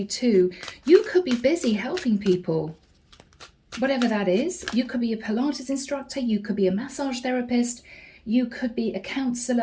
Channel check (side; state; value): both; identical; correlation 1.00